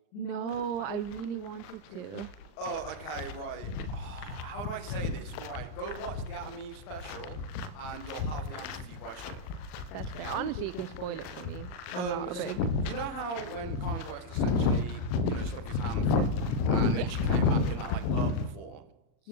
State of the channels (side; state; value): right; late; 39 ms